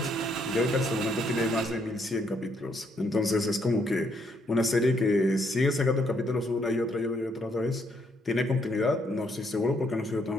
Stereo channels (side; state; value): both; normal; correlation 0.72